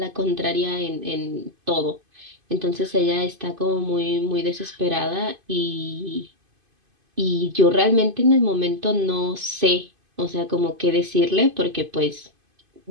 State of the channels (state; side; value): late; left; 2.5 ms